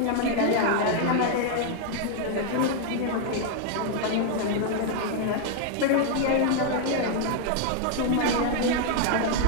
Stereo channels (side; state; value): both; different; correlation 0.00